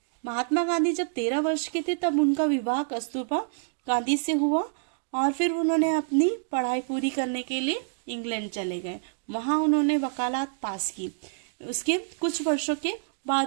महात्मा गांधी जब 13 वर्ष के थे तब उनका विवाह कस्तूरबा गांधी से हुआ और फिर उन्होंने अपनी पढ़ाई पूरी करने के लिए इंग्लैंड चले गए। वहां उन्होंने वकालत पास की। उसके कुछ वर्षों के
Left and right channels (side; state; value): left; silent; digital silence